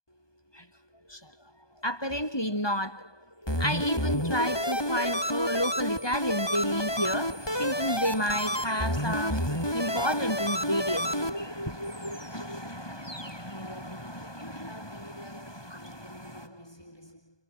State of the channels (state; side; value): late; right; 1.2 ms